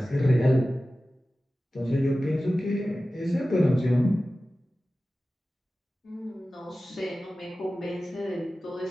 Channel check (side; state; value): both; normal; correlation 0.95